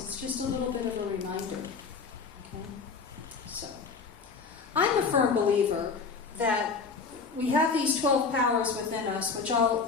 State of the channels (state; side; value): quieter; right; 5.0 dB